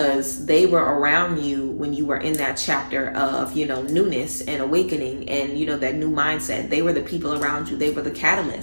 they were around you when you were in that chapter of, newness and awakening and, that new mindset. They were the people around you. They were the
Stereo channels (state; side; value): inverted; both; correlation -1.00